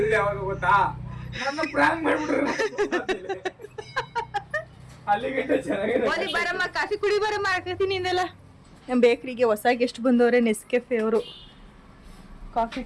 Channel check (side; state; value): both; identical; correlation 1.00